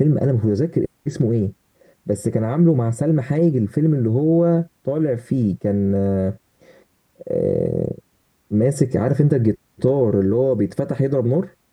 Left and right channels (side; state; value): both; identical; correlation 1.00